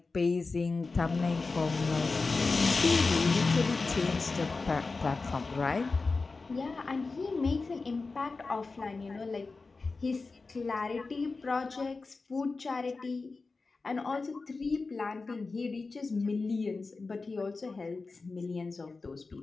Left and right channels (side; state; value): right; quieter; 3.9 dB